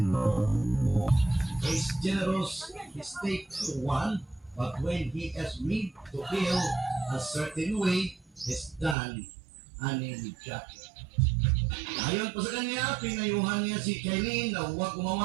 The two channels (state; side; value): drops out; left; at 9.0 s